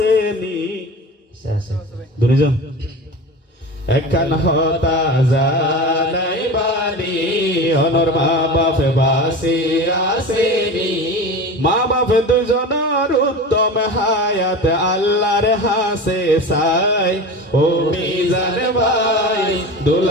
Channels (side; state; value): both; normal; correlation 0.31